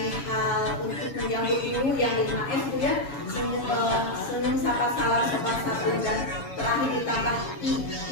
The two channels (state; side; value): late; right; 7.1 ms